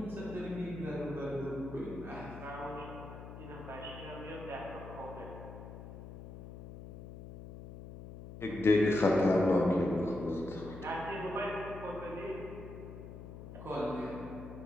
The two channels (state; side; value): noise; left; hum, 12 dB below the sound